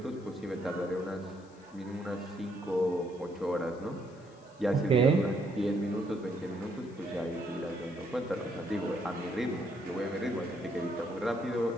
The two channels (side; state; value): left; noise; hiss, 29 dB below the sound